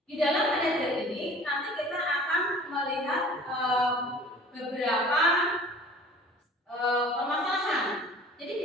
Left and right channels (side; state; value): both; normal; correlation 0.46